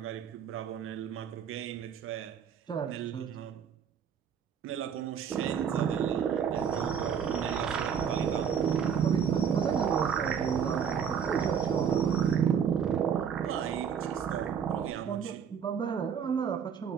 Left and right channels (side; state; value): left; quieter; 7.6 dB